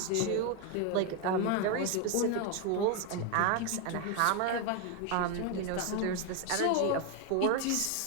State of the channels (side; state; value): both; different; correlation 0.01